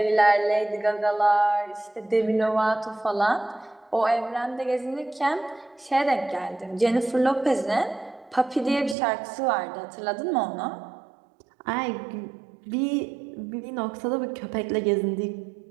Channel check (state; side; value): drops out; left; at 9.0 s